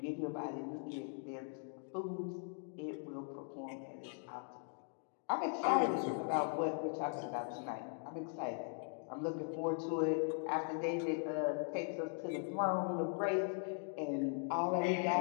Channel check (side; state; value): right; silent; 51 dB below the other